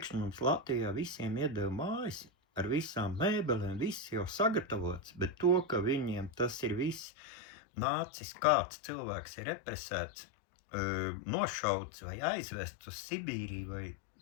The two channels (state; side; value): drops out; right; at 7.1 s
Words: mums Latvijā visiem iedeva mājas ar visām mēbelēm, viss jau sagatavots, bet to, ka viņiem tas ir viss nācis, kāds cilvēks ir represēts, nošauts vai aizvests uz Sibīriju, vai